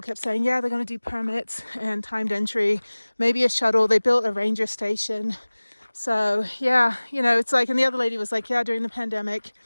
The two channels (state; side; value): inverted; both; correlation -1.00